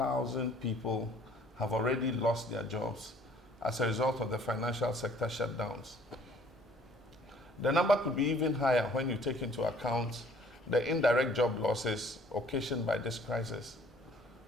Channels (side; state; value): both; normal; correlation 0.57